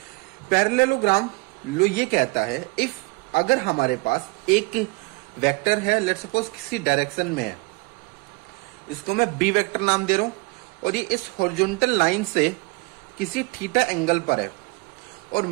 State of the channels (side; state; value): left; quieter; 28.1 dB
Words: पैरेललोग्राम लॉ ये कहता है, इफ अगर हमारे पास एक वेक्टर है, लेट सपोज किसी डायरेक्शन में है, इसको मैं बी वेक्टर नाम दे रहा हूं, और ये इस हॉरिजॉन्टल लाइन से किसी थीटा एंगल पर है, और